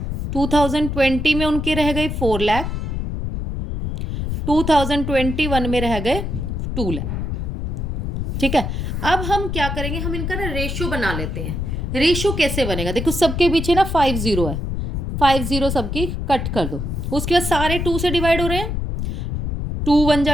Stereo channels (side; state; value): left; noise; rumble, 3 dB below the sound